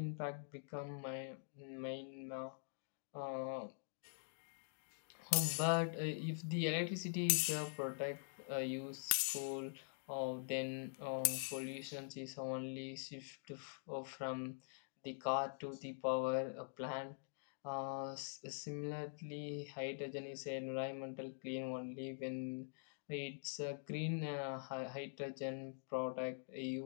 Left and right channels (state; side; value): silent; right; digital silence